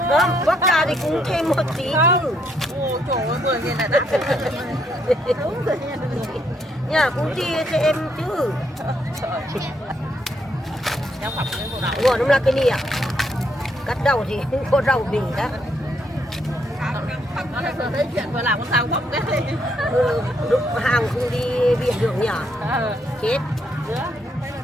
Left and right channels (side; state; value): both; normal; correlation 0.74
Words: Đó, bóc ra thì cũng thêm một tí chứ. ô trời ơi 10.000 là đắt đúng rồi nha Nhà cũng chia cho em chứ. nhau phẩm cái bộ đạo Ngọt lắm là cái nè. Cắt đầu thì cũng có rau bì đó. nó là thấy chuyện vừa làm con sao bóc đấy Lúc hàng không đi biển được nhỉ? Chết.